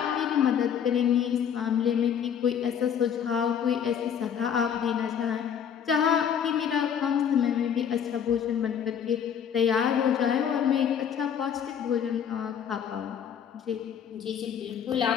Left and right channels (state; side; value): quieter; right; 8.2 dB